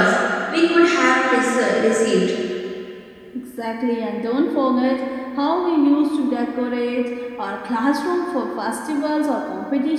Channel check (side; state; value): both; identical; correlation 1.00